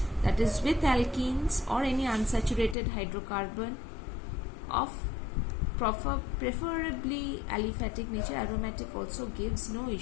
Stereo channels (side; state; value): right; drops out; at 2.8 s